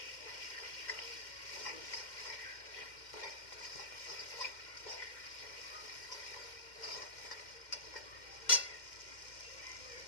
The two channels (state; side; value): late; right; 2.1 ms